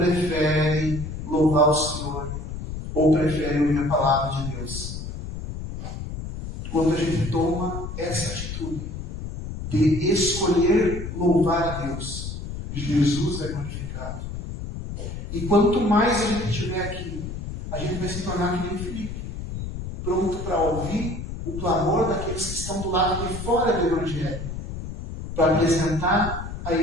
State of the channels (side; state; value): left; noise; rumble, 7 dB below the sound